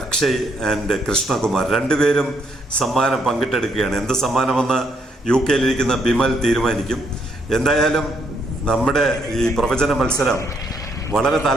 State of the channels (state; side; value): normal; both; correlation 0.73